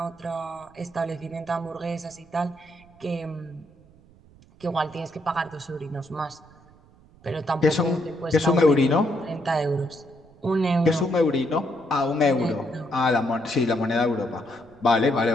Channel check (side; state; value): right; noise; rumble, 27 dB below the sound